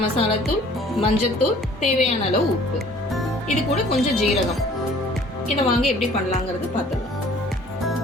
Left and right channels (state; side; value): normal; both; correlation 0.53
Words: மசாலாத்தூள், மஞ்சத்தூள், தேவையான அளவு உப்பு. இது கூட கொஞ்சம் ஜீரகம். இதை வாங்க எப்படி பண்ணலாங்கிறது பார்த்துக்கலாம்.